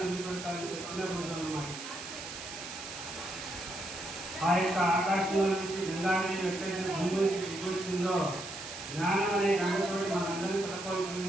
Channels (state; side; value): noise; right; hiss, 10 dB below the sound